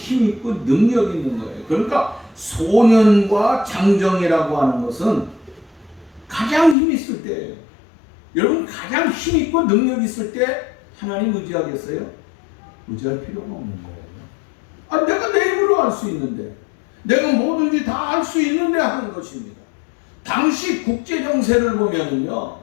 있고 능력 있는 거예요. 그러니까 소년과 장정이라고 하는 것은 가장 힘 있을 때예요. 여러분, 가장 힘 있고 능력 있을 때 하나님 의지하겠어요? 의지할 필요가 없는 거예요. 아, 내가 내 힘으로 할 수 있는데, 내가 뭐든지 다 할 수 있는데 하는 것입니다. 당시 국제 정세를 보면은요,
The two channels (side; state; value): right; drops out; at 6.8 s